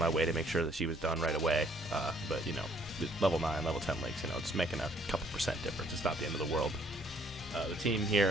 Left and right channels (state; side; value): normal; both; correlation 0.63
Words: way to make sure that she was done right away, but, you know, level 9, level 10 links, you know, it's making a couple percent difference. It's not the end of the world. The team